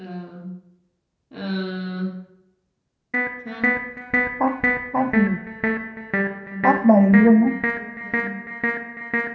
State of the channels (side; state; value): both; identical; correlation 1.00